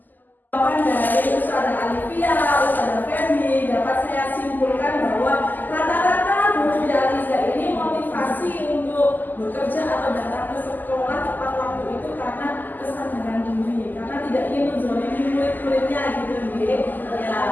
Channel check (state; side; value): late; right; 0.086 ms